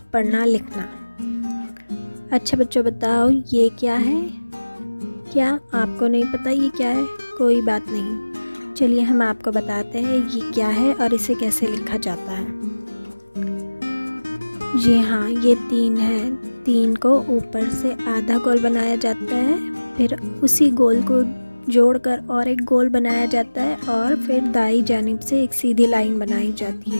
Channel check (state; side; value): inverted; both; correlation -1.00